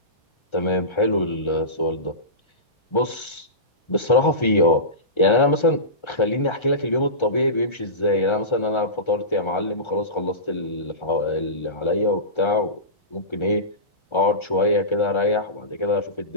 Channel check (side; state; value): right; late; 1.3 ms